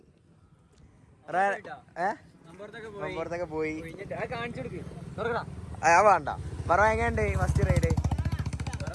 പുറത്തൊക്കെ പോയി. വേണ്ട മറവാൻ എങ്ങനെയുണ്ട് ഫസ്റ്റ് റൈഡ്?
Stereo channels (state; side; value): identical; both; correlation 1.00